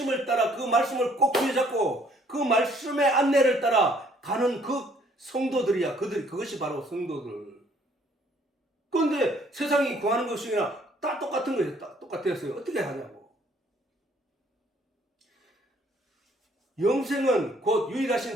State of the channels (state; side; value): normal; both; correlation 0.62